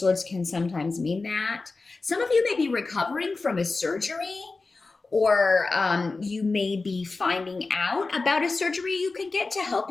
can sometimes mean that. Some of you may be recovering from a surgery, or you may be finding out about a surgery you could get to help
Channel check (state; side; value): quieter; right; 3.8 dB